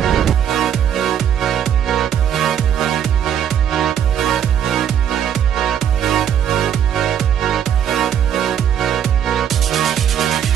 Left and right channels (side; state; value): left; quieter; 9.2 dB